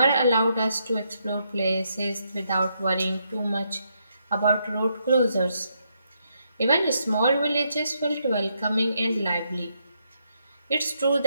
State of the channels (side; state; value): both; inverted; correlation -0.78